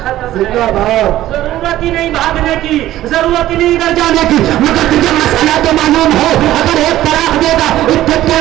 ضرورت ہی نہیں بھاگنے کی, ضرورت ہی نہیں ادھر جانے کی. مگر تجھے مسئلہ تو معلوم ہو, اگر ایک طلاق دے گا عدت کے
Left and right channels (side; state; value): left; quieter; 14.2 dB